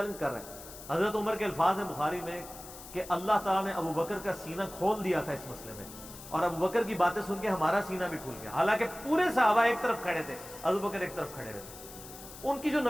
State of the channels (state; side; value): noise; left; hiss, 15 dB below the sound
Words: کر رہے ہیں. حضرت عمر کے الفاظ ہیں بخاری میں کہ اللہ تعالیٰ نے ابو بکر کا سینہ کھول دیا تھا اس مسئلے میں، اور ابو بکر کی باتیں سن کے ہمارا سینہ بھی کھل گیا. حالانکہ پورے صحابہ ایک طرف کھڑے تھے، ابو بکر ایک طرف کھڑے رہتے. ان کی جو